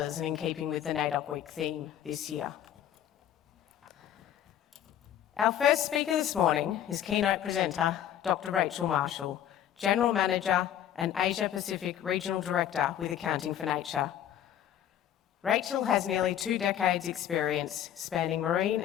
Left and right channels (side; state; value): right; quieter; 10.7 dB